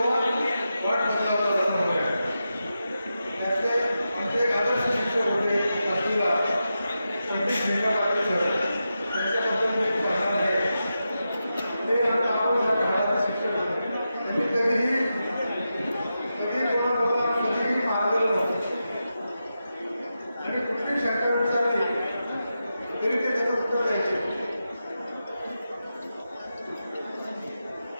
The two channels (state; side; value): inverted; both; correlation -0.89